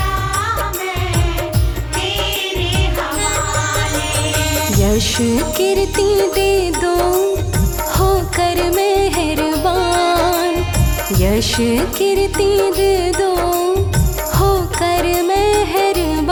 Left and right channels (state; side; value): identical; both; correlation 1.00